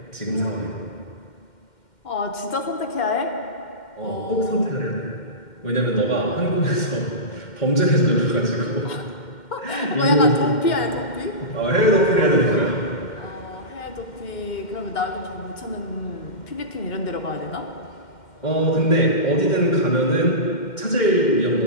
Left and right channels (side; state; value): right; late; 2.1 ms